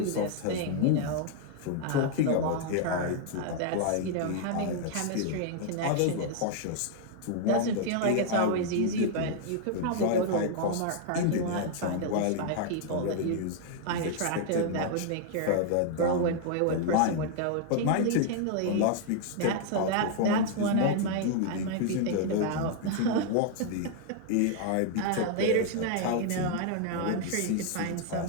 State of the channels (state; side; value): different; both; correlation 0.00